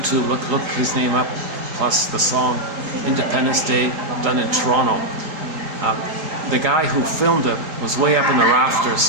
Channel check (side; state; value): left; late; 3.8 ms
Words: look his name up, plus the song Independence Day, done in Toronto. The guy who filmed it was way up in the rafters,